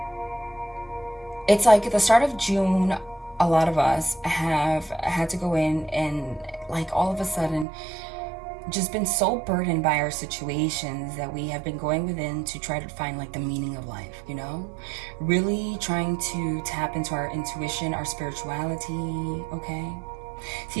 It's like at the start of June, a lot of us have had to go in and like all of a sudden just been so burdened by our situations that we have been going within to try to find like the meaning of life, you know? Really trying to tap into our intuition, our spirituality, okay?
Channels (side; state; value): left; drops out; at 7.7 s